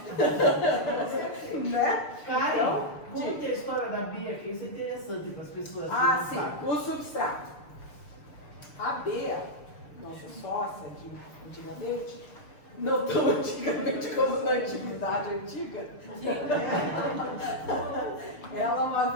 Né? Karen, Então, conta a história da Bia, que isso é interessante para as pessoas que ah, não sim, sabem. o substrato. A Bea, nossa sócia de antigamente, não tão antigamente como na antiguidade antiga, ela uma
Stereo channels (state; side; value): late; right; 6.7 ms